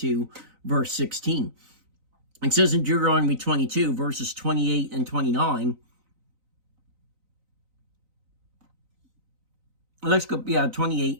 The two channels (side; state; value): left; late; 3.9 ms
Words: verse 16. It says in Deuteronomy 22, verses 28 and 29, let's go,